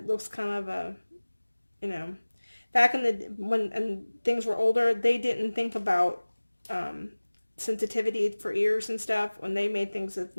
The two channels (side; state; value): both; inverted; correlation -1.00